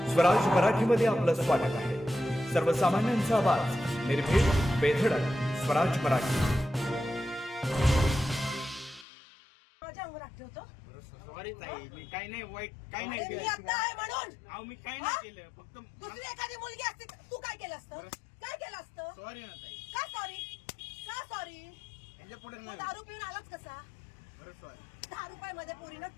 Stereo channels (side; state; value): right; drops out; at 9.1 s